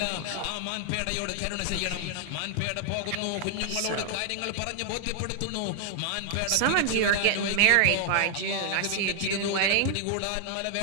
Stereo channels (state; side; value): different; both; correlation 0.00